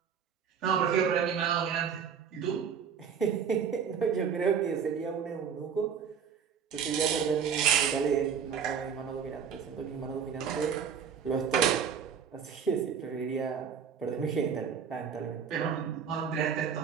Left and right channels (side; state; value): left; quieter; 7.1 dB